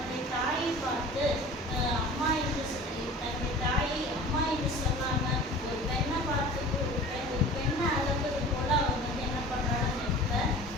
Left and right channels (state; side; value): normal; both; correlation 0.41